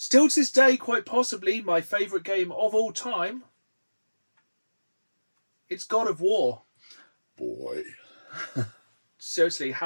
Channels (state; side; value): inverted; both; correlation -1.00